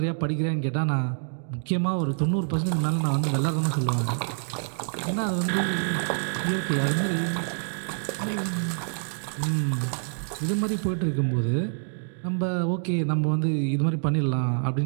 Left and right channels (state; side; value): silent; left; 60 dB below the other